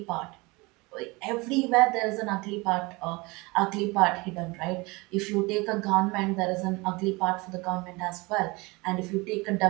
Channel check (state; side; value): quieter; left; 24.8 dB